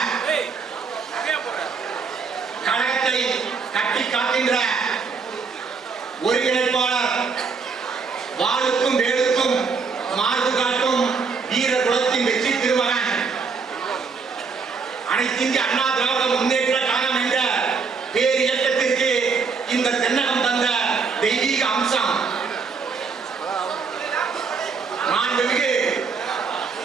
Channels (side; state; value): left; quieter; 5.1 dB